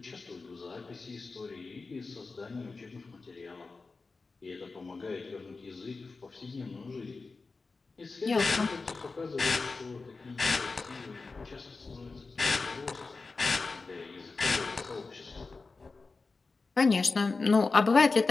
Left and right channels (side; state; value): right; quieter; 4.0 dB